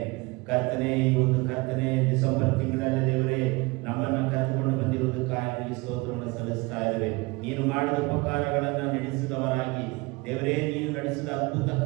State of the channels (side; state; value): left; quieter; 24.9 dB